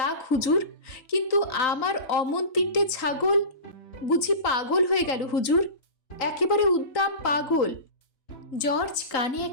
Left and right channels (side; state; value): right; late; 3.9 ms